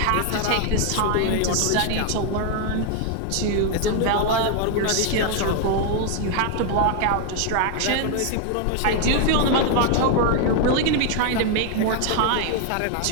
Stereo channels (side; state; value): both; different; correlation 0.00